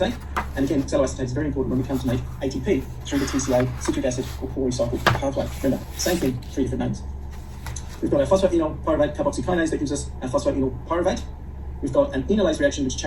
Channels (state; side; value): identical; both; correlation 1.00